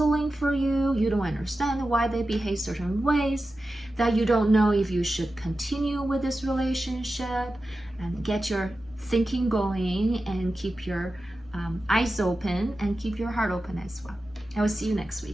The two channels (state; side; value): normal; both; correlation 0.93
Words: for you. You don't understand why they behave certain ways, that you don't know if you should continue with this relationship, and get your thinking going and keep your eyes open and keep your heart open as well. I will see you next